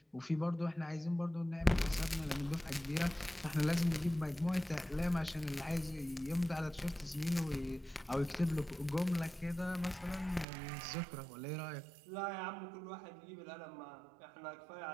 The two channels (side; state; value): left; drops out; at 10.5 s